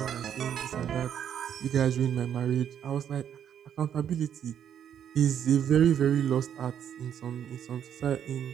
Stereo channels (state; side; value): quieter; left; 9.2 dB